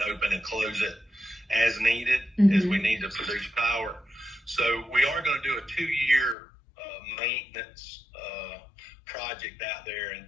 open and close it as needed, as we need to produce power. So we are going to do a 2-year maintenance project out there in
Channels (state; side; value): drops out; right; at 6.4 s